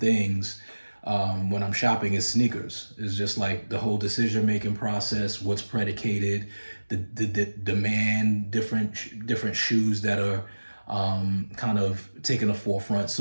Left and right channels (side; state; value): both; inverted; correlation -1.00